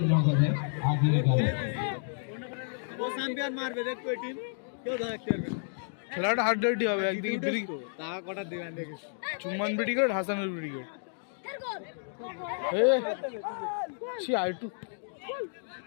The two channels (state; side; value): silent; right; digital silence